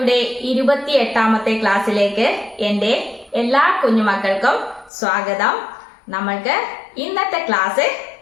28ാമത്തെ ക്ലാസ്സിലേക്ക് എന്റെ എല്ലാ കുഞ്ഞുമക്കൾക്കും സ്വാഗതം. നമ്മൾക്ക് ഇന്നത്തെ ക്ലാസ്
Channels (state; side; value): drops out; right; at 4.9 s